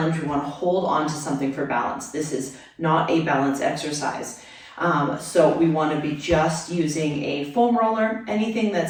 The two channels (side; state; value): both; identical; correlation 1.00